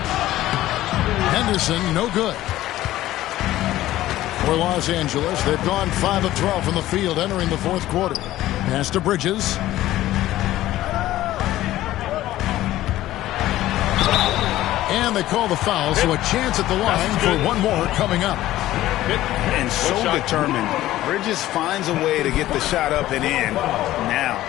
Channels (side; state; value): right; quieter; 14.9 dB